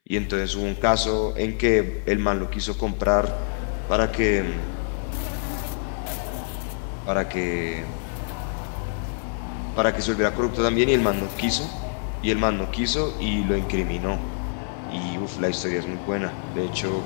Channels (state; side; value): silent; right; 59 dB below the other